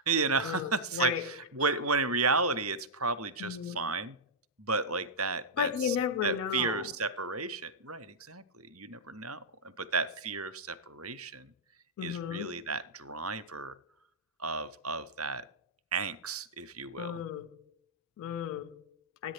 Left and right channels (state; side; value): normal; both; correlation -0.09